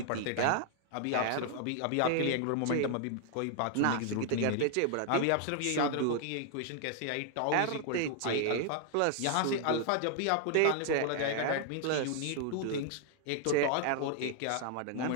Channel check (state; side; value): different; both; correlation 0.00